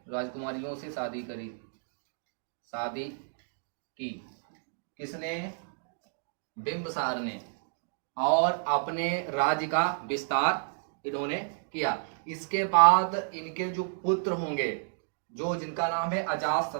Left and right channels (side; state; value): left; silent; digital silence